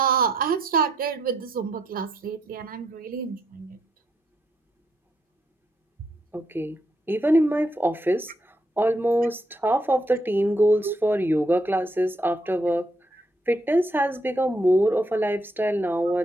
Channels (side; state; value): both; normal; correlation 0.76